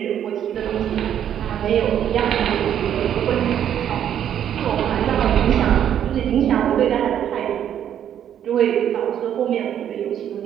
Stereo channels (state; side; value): quieter; left; 9.9 dB